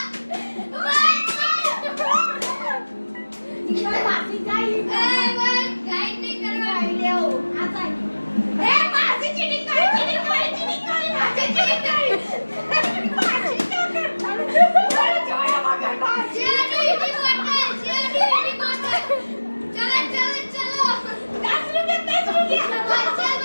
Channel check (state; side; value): inverted; both; correlation -1.00